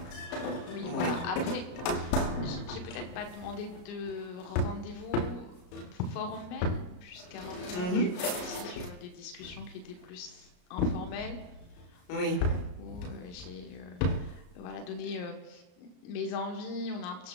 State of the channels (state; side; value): late; right; 34 ms